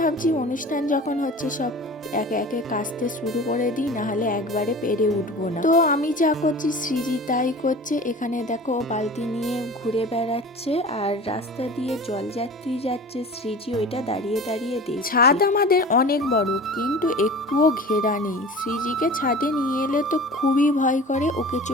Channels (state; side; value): normal; both; correlation 0.38